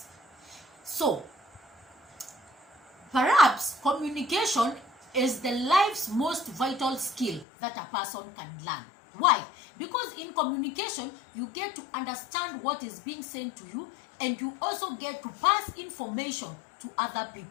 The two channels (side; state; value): right; drops out; at 7.5 s